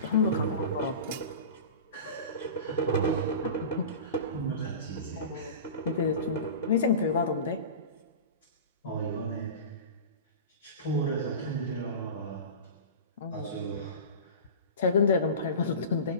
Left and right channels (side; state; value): both; inverted; correlation -0.32